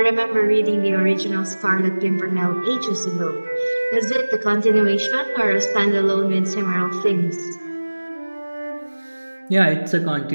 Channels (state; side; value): inverted; both; correlation -1.00